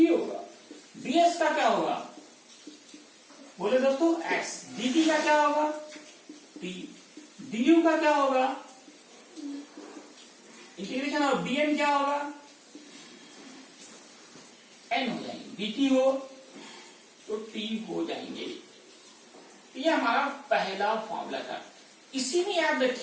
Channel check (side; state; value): both; identical; correlation 1.00